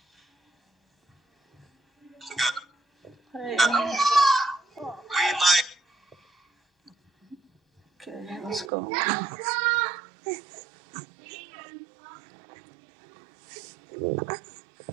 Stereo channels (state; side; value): drops out; left; at 8.7 s